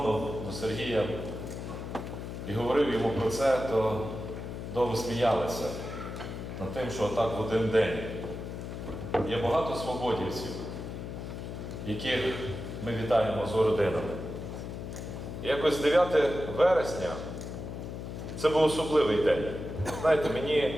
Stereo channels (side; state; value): left; noise; hum, 7 dB below the sound